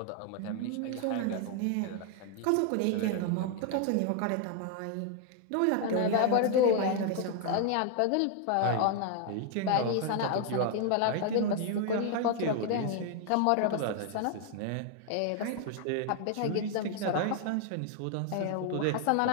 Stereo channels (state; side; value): different; both; correlation 0.00